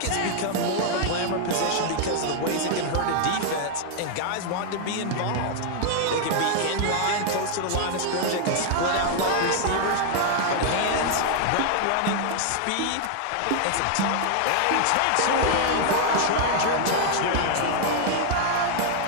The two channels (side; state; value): both; different; correlation 0.00